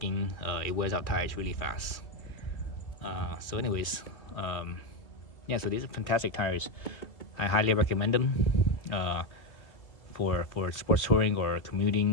it wears out tires really fast. So anyways, yeah, so these are fantastic tires. I highly recommend them for sports touring or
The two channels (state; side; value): late; right; 2.1 ms